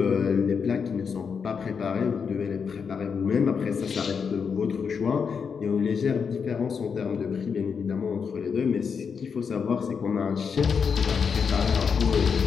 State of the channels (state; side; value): quieter; right; 6.2 dB